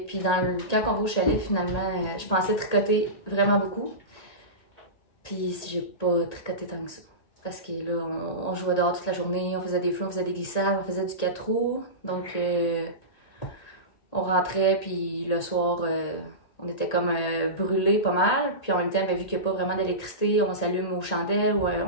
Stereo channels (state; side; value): late; right; 1.8 ms